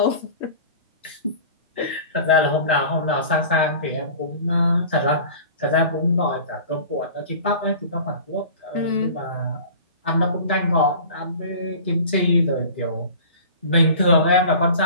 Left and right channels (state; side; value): inverted; both; correlation -0.40